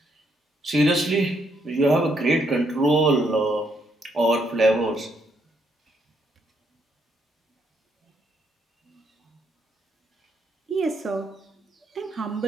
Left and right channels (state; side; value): normal; both; correlation 0.74